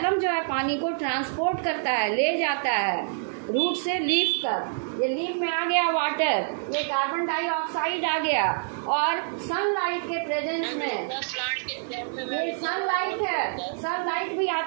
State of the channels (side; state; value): left; silent; digital silence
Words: जो है पानी को ट्रांसपोर्ट करता है, ले जाता है रूट से लीफ तक। ये लीफ में आ गया वाटर, ये कार्बन डाइऑक्साइड आ गया, और सनलाइट के प्रेजेंस में ये सनलाइट है, सनलाइट भी